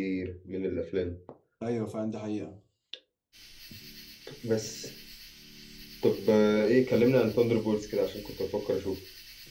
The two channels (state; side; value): identical; both; correlation 1.00